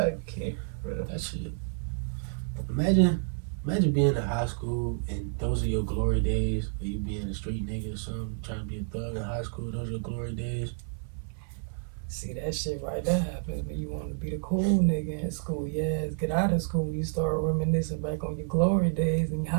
bro. That shit. Imagine being in high school and those are your glory days, or you being a street nigga or something, trying to be a thug in high school, those are your glory days. See, that shit right there happens when you want to be the cool nigga in school. Yeah, get out of school, you start reminiscing back on your glory days in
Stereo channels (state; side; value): silent; left; 58 dB below the other